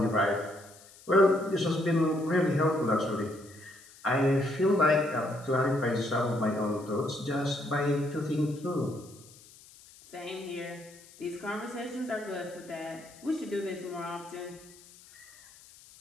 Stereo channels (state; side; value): noise; left; hiss, 23 dB below the sound